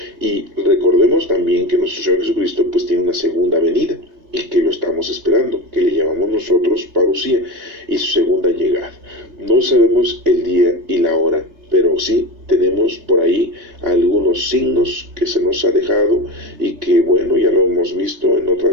Y recordemos también que nuestro Señor Jesucristo pues tiene una segunda venida, y que lo estamos esperando, que le llamamos nosotros parusía, y su segunda llegada. No sabemos el día y la hora, pero sí tenemos por ahí algunos signos que se nos ha dejado y que, bueno, ya lo hemos visto en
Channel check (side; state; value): left; late; 3.3 ms